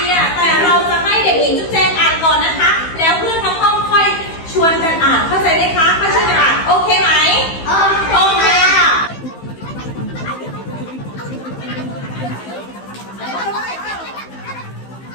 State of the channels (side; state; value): right; late; 15 ms